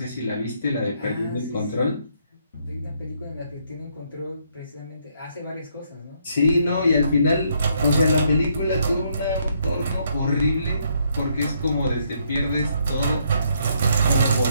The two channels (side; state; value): both; inverted; correlation -0.72